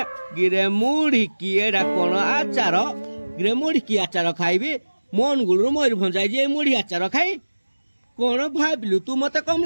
गिरे मुढ़ी की एडा कोन आचार गिरे मुढ़ी की आचार खाइबी मन गुलु मयूरभंज जाइजी मुढ़ी आचार खाई कोन भाबिलु तू मते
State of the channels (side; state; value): both; inverted; correlation -1.00